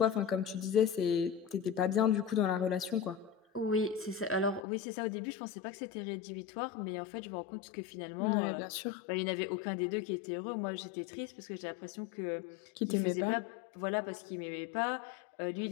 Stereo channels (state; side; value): drops out; right; at 4.7 s